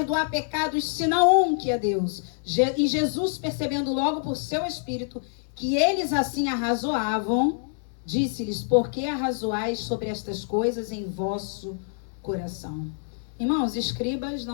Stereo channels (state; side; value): silent; right; digital silence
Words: pecados senão um, que é Deus? E Jesus, percebendo logo por seu espírito que eles assim arrazoavam, disse-lhes: por que arrazoais sobre estas coisas em vosso coração? Irmãos, escribas